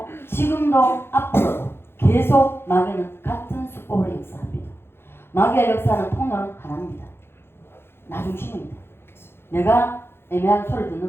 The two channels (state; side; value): late; right; 0.11 ms